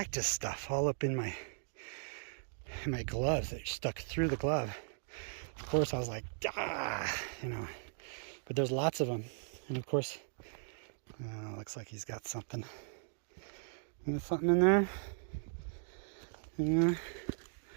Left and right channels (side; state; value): left; silent; digital silence